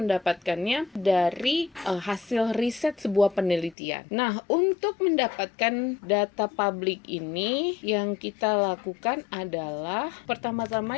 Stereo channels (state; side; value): drops out; right; at 3.8 s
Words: dari hasil riset sebuah penelitian. Nah, untuk mendapatkan data publik ini yang kita lakukan adalah